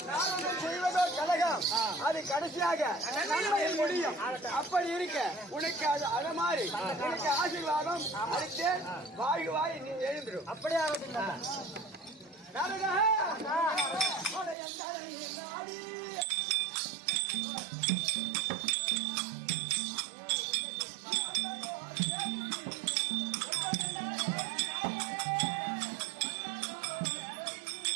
நான் செய்வதோ கழகம் அது கடைசியாக நன்மையில் முடியும். அப்படி இருக்க உனக்கு அது மாதிரி உனக்கு ஆசீர்வாதம் அளித்து வாய் நீ எழுந்துடும். அப்படியே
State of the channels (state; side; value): drops out; left; at 14.6 s